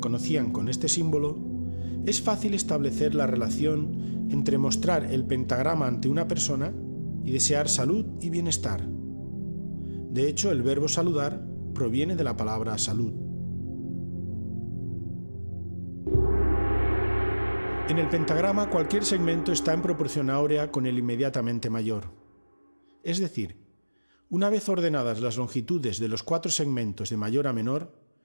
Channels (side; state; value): both; inverted; correlation -1.00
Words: con este símbolo, es fácil establecer la relación entre mostrar el pentagrama ante una persona y desear salud y bienestar. De hecho, el verbo saludar proviene de la palabra salud. En el pentagrama cualquier segmento está en proporción áurea con el inmediatamente mayor. Es decir, una vez ordenadas las longitudes de los 4 segmentos de mayor a menor,